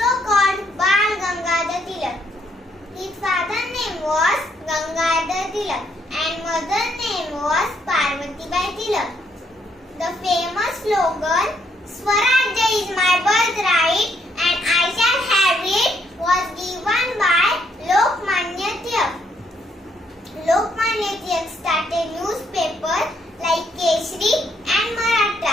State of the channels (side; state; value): both; normal; correlation 0.72